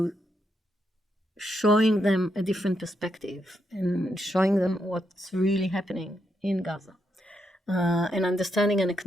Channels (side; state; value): both; normal; correlation 0.81